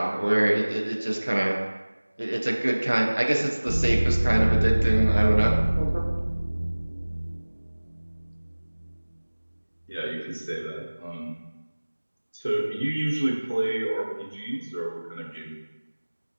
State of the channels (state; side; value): inverted; both; correlation -1.00